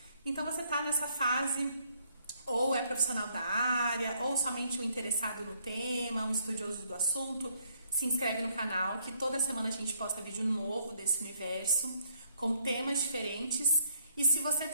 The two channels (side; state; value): both; inverted; correlation -0.68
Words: Então você está nessa fase, ou é profissional da área, ou somente um interessado no tema, um estudioso do assunto, se inscreve no canal, que toda semana a gente posta vídeo novo desse universo, com temas diferentes. E se você